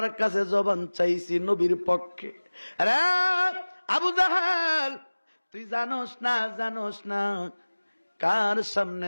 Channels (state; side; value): inverted; both; correlation -1.00